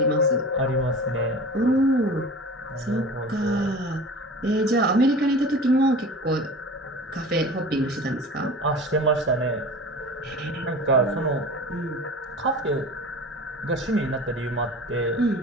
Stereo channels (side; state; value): both; normal; correlation 0.36